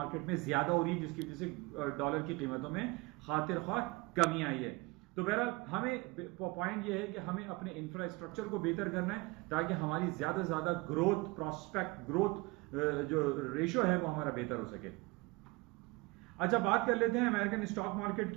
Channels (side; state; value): left; quieter; 24.2 dB